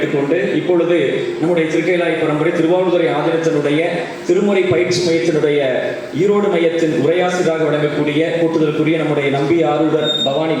இப்பொழுது நம்முடைய திருக்கைலாய பரம்பரை திருவாவூதுறை ஆதீனத்தினுடைய திருமுறை பயிற்சி மையத்தினுடைய ஈரோடு மையத்தின் உரையாசிரியராக வழங்கக்கூடிய கூட்டுதலுக்குரிய நம்முடைய நம்பி ஆரூடர் பவானி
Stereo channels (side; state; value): both; identical; correlation 1.00